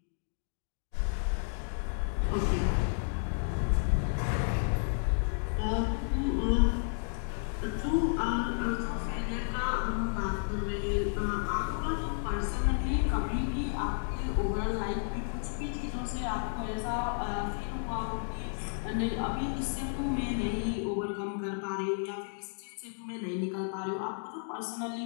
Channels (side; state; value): right; silent; digital silence